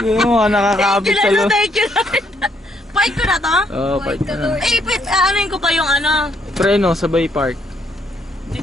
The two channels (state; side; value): normal; both; correlation 0.71